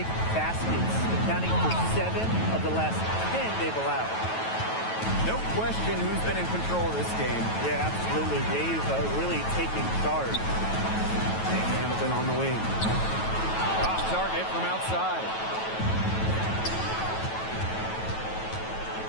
baskets, accounting for 7 of the last 10 they've allowed. No question who's been in control of this game. Yeah, absolutely. They've really taken charge. Hamilton on the wing. Off target from outside.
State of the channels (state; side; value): late; right; 9.2 ms